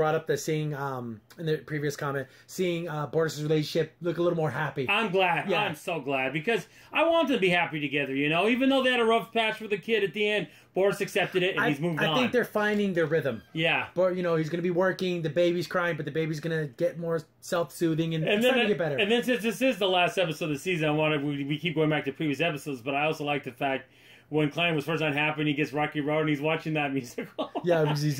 up the seeing, in the previous comment, seeing Bortus' relationship look a little more happy. I'm glad. Yeah. I'm so glad because I want them to be happy together, even though they had a rough patch for the kid at the end, Bortus accepted it and he's moved on. I think they're finding their rhythm. Yeah. But, he's going to be working, the baby's crying, but the baby's going to get more self-soothing and it's going to get better. And then since this is the last episode of the season, we keep going back to previous episodes, but I also like the fact when Klein was first unhappy and he gets Rocky Road and he's watching that musical. Yeah, because he's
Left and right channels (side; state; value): both; identical; correlation 1.00